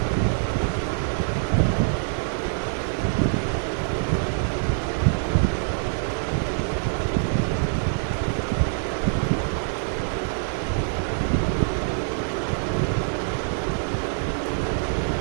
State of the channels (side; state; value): left; silent; 62 dB below the other